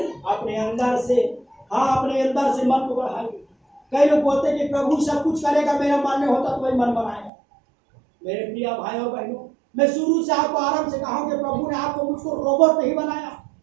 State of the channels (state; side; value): drops out; left; at 7.3 s